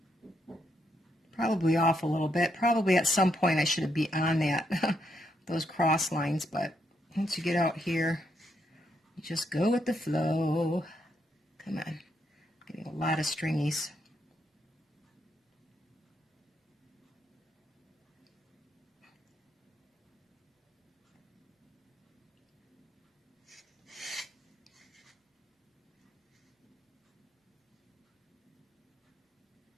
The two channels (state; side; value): normal; both; correlation 0.78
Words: Probably off a little bit. Probably at some point I should be on that those cross lines, but once you get out here, you just go with the flow. Come on. Getting a lot of stringies.